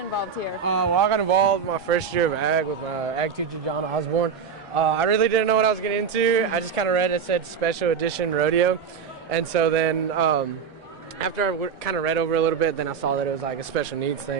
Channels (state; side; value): quieter; left; 6.6 dB